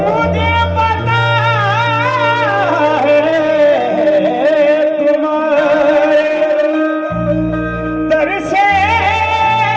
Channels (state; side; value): identical; both; correlation 1.00